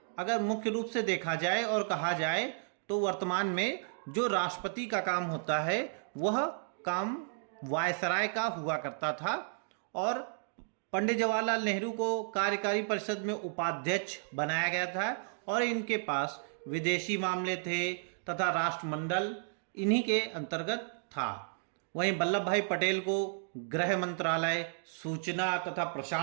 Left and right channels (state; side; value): silent; left; digital silence